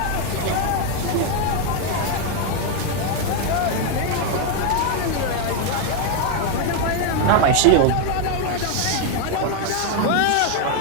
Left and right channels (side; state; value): both; different; correlation 0.01